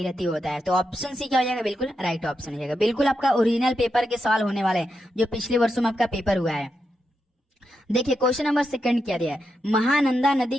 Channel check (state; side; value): normal; both; correlation 0.85